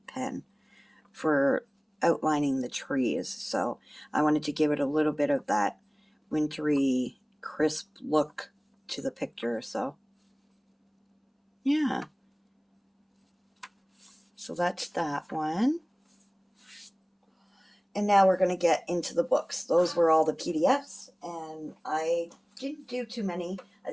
pen for outlining the trees. So I wanted to give it a little bit of that wintry, crisp look to the picture. So yeah. So that's that one. And now we're going to get into the books. Those were all the PDFs, and I didn't do too many. I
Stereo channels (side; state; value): both; identical; correlation 1.00